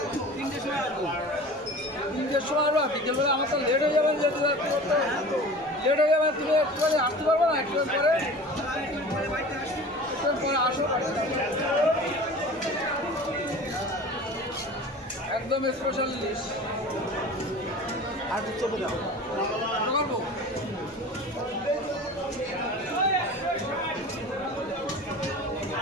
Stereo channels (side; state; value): both; normal; correlation 0.39